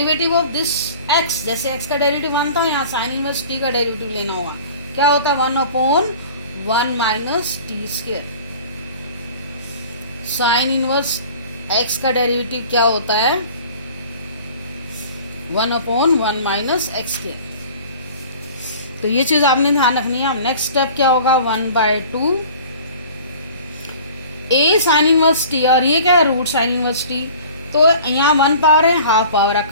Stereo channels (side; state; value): both; inverted; correlation -0.45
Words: of this x, जैसे x का डेरिवेटिव 1 था, यहाँ साइन इनवर्स t का डेरिवेटिव लेना होगा, क्या होता है, 1/1 minus T square. Sine inverse x का डेरिवेटिव क्या होता है, 1/1 माइनस एक्स स्क्वायर। तो ये चीज आपने ध्यान रखनी है। अब नेक्स्ट स्टेप क्या होगा, 1/2 a साइन इनवर्स t, और ये क्या है, रूट साइन इनवर्स t। तो यहाँ 1 पावर है, हाफ पावर है,